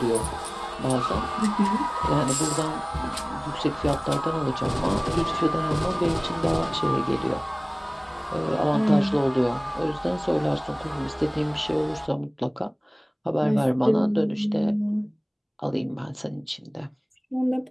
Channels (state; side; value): identical; both; correlation 1.00